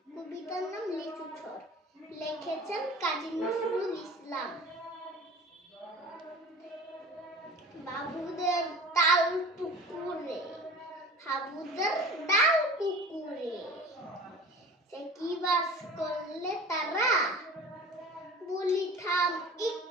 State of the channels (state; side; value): normal; both; correlation 0.39